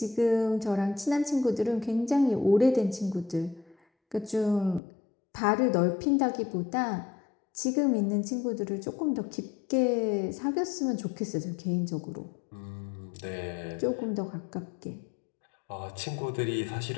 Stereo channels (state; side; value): drops out; right; at 4.8 s